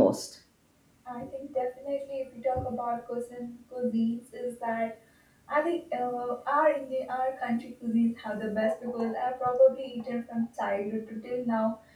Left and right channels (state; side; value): identical; both; correlation 1.00